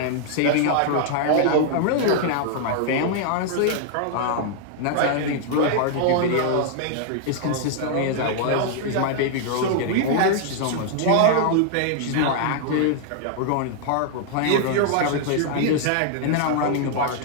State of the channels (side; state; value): both; different; correlation 0.00